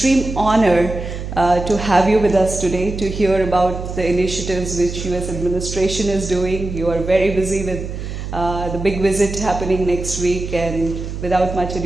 honor to have you with us today to hear about the initiatives which US administration is doing. You are very busy with the big visit happening next week, and without much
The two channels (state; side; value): noise; right; hum, 7 dB below the sound